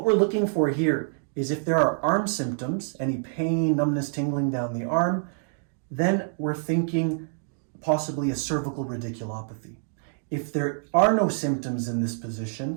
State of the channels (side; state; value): left; silent; digital silence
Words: we're looking for here is if there are arm symptoms, any pain, numbness, tingling down the arm, then we're thinking possibly a cervical radiculopathy. If there are no symptoms in this